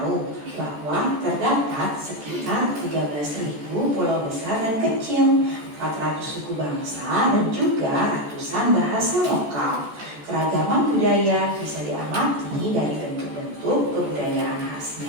bahwa terdapat sekitar 13.000 pulau besar dan kecil, 400 suku bangsa, dan juga ratusan bahasa lokal. Keragaman budaya bisa diamati dari bentuk-bentuk kebudayaan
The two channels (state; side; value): late; left; 14 ms